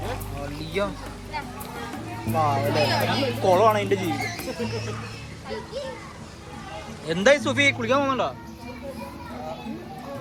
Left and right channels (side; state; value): both; identical; correlation 1.00